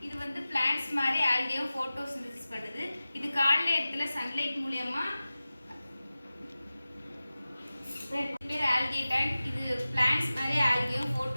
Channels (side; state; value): both; inverted; correlation -0.96